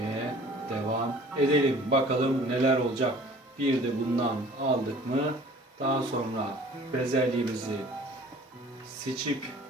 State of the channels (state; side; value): normal; both; correlation 0.48